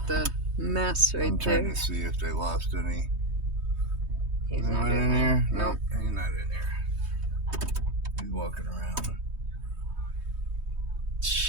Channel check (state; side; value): late; left; 3.2 ms